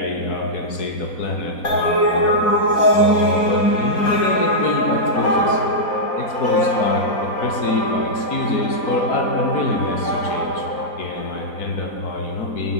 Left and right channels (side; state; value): right; late; 4.4 ms